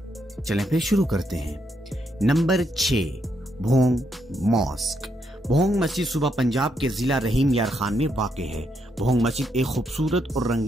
چلیں پھر شروع کرتے ہیں۔ Number 6، Bhong mask. بھونگ مسجد صوبہ پنجاب کے ضلع رحیم یار خان میں واقع ہے۔ بھونگ مسجد ایک خوبصورت اور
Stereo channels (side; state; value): both; normal; correlation 0.78